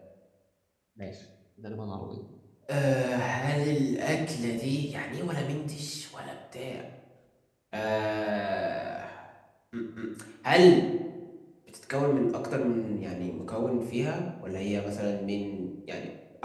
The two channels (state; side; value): identical; both; correlation 1.00